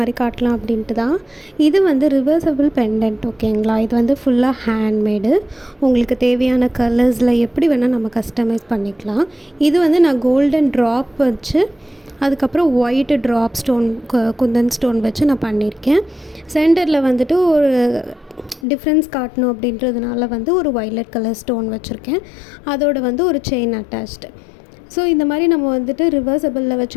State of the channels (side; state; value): right; drops out; at 18.7 s